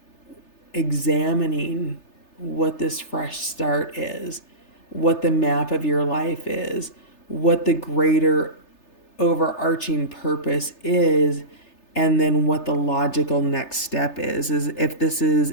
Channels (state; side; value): late; right; 3.3 ms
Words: examining what this fresh start is, what the map of your life is, what the greater overarching purpose is, and then what the logical next step is if this is